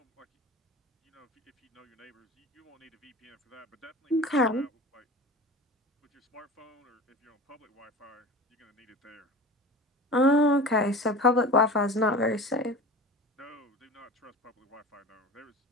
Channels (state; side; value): normal; both; correlation 0.35